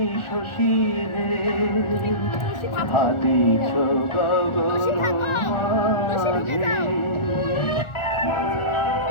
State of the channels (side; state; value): right; late; 1.4 ms